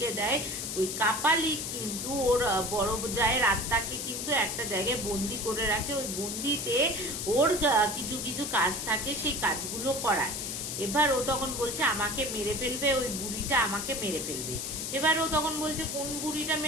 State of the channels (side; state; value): left; noise; hiss, 4 dB below the sound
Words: দেয়। ওই কাপালিক কিন্তু ওর বড় জায়ের আত্মাকে কিন্তু একটা জায়গায় বন্দি করে রাখে, ওই বন্দিতে ওর কিছু কিছু কাজ থাকে, সেই কাজগুলো করায়। এবার ও তখন বলছে আমাকে মেরে ফেলবে, ওই বুড়িটা আমাকে মেরে ফেলবে। এবার ও তখন বলছে কোন বুড়িটা